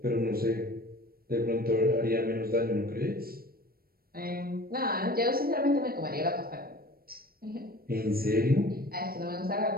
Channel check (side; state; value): left; late; 0.44 ms